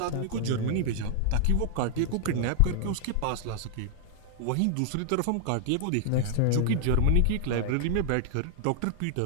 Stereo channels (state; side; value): different; both; correlation 0.00